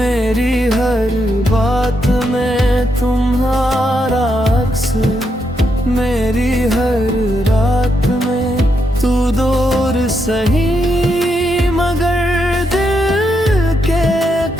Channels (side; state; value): both; normal; correlation 0.81